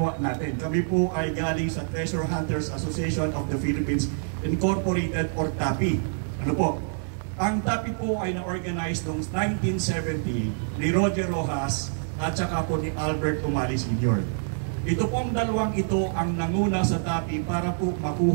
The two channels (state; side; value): silent; left; 61 dB below the other